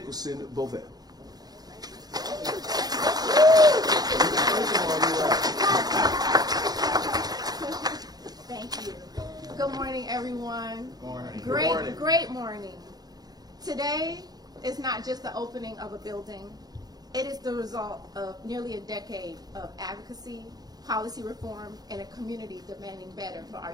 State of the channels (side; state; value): left; late; 0.19 ms